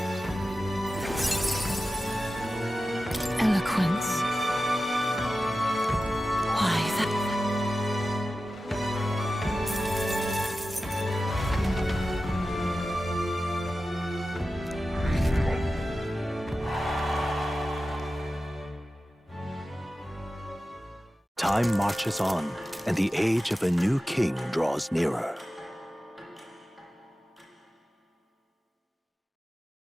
Eloquence. Why, that... Time marches on, and the age of a new king draws nearer.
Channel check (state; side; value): normal; both; correlation 0.94